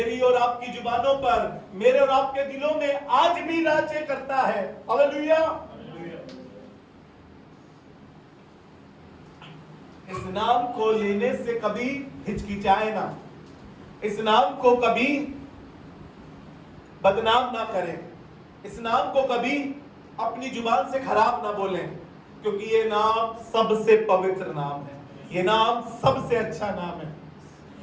और आपकी जुबानों पर, मेरे और आपके दिलों में आज भी राज्य करता है। हालेलुया। इस नाम को लेने से कभी हिचकिचाए ना, इस नाम को कभी बदनाम ना करें, इस नाम को कभी अपनी जुबान से खराब ना बोलें, क्योंकि ये नाम सबसे पवित्र नाम है, ये नाम सबसे अच्छा नाम है।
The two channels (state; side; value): identical; both; correlation 1.00